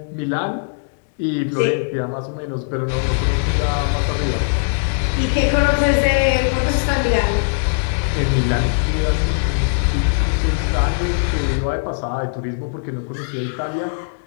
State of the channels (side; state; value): right; silent; digital silence